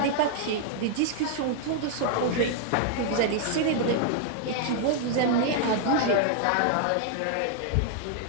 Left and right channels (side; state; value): both; different; correlation -0.01